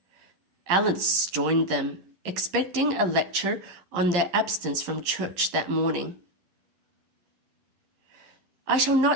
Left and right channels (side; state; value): left; late; 11 ms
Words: Alice joined them, expecting a lecture on their absence from church that morning. "I shall